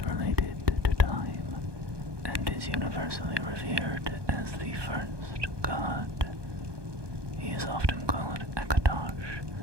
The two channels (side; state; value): left; late; 1.2 ms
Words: related to time, and is universally revered as the first god. He is often called Akatosh,